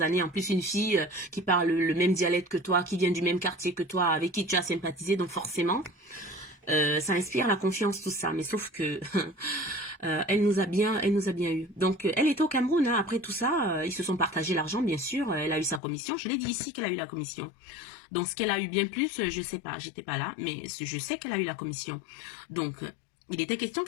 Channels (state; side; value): drops out; right; at 15.8 s